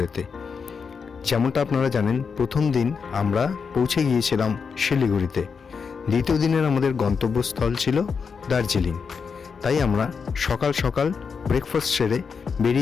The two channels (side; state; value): right; quieter; 5.8 dB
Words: যেমনটা আপনারা জানেন, প্রথম দিন আমরা পৌঁছে গিয়েছিলাম শিলিগুড়িতে। দ্বিতীয় দিনের আমাদের গন্তব্যস্থল ছিল দার্জিলিং। তাই আমরা সকাল সকাল ব্রেকফাস্ট সেরে